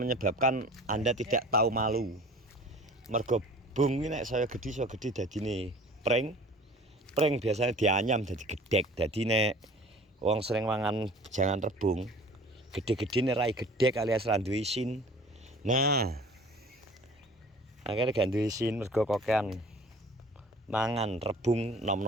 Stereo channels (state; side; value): normal; both; correlation 0.46